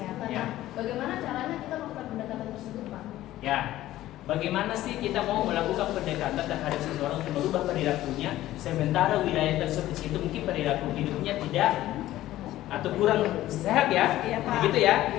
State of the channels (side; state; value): right; quieter; 14.7 dB